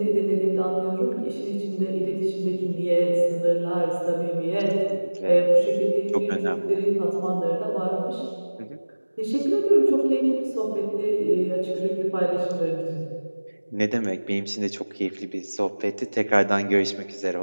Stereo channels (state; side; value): inverted; both; correlation -1.00